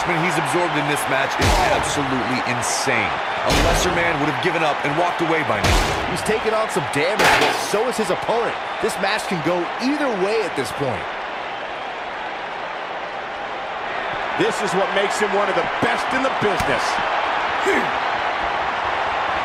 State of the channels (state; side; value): identical; both; correlation 1.00